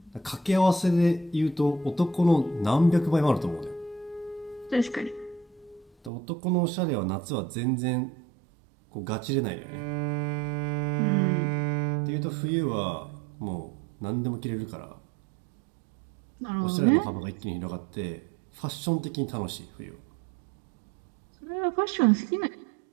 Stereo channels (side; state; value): left; drops out; at 6.1 s